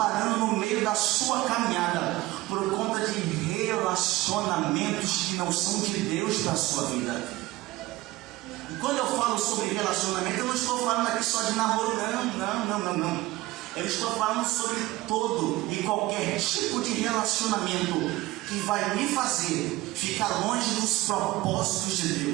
no meio da sua caminhada por conta de relacionamentos que não são de Deus para a sua vida. E quando eu falo sobre relacionamento, eu não estou falando aqui só de namoro, não. Eu estou falando sobre todo e qualquer tipo de relacionamento que vai me fazer ficar longe dos propósitos de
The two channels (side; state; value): left; quieter; 18.7 dB